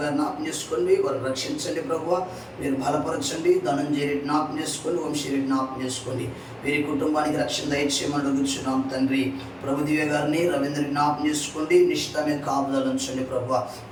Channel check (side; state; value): both; identical; correlation 1.00